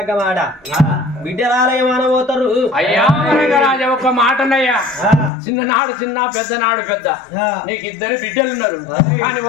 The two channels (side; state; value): right; drops out; at 5.3 s